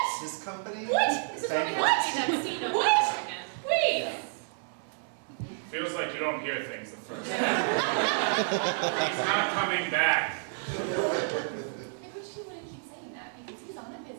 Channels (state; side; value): silent; left; digital silence